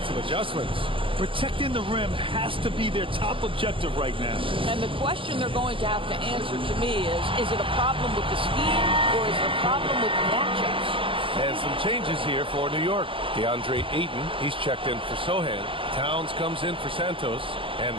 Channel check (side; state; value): left; late; 0.25 ms